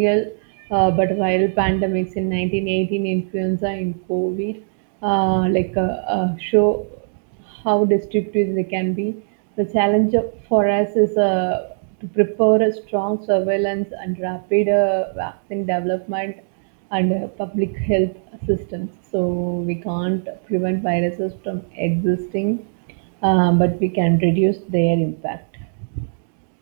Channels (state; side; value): silent; left; digital silence